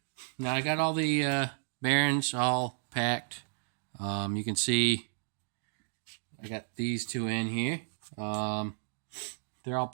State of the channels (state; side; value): silent; left; 56 dB below the other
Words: Now I got all the bearings all packed. You can see I got these two in here. They're all